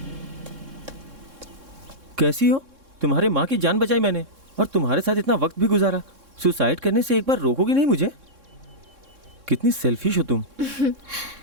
कैसी हो? तुम्हारे माँ की जान बचाई मैंने, और तुम्हारे साथ इतना वक्त भी गुजारा। सुसाइड करने से एक बार रोकोगी नहीं मुझे? कितनी सेल्फिश हो तुम।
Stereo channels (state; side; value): late; left; 3.6 ms